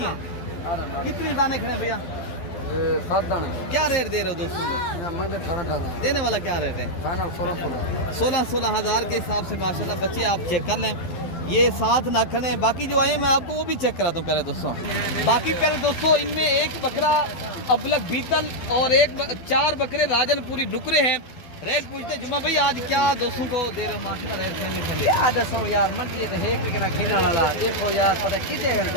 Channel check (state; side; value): late; right; 12 ms